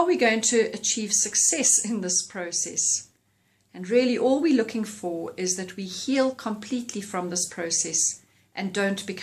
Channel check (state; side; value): identical; both; correlation 1.00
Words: we going to achieve success in this process? And really all we're looking for is that we heal completely from this process and don't